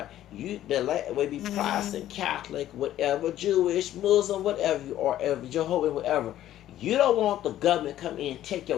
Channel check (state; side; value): quieter; right; 12.7 dB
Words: whether be Protestant, Catholic, whatever, Jewish, Muslim, whatever you are, Jehovah, whatever, you don't want the government come in and take